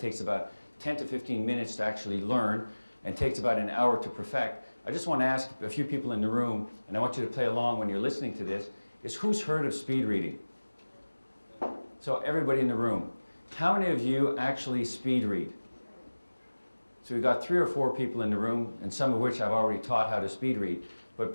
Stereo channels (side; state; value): both; inverted; correlation -1.00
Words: about 10 to 15 minutes to actually learn and takes about an hour to perfect, I just want to ask a few people in the room, and I want you to play along when you're listening to this, is who's heard of speed reading? So everybody in the room. How many of you actually speed read? So we've got 3 or 4 people in the room, and some of which I've already taught how to speed read. But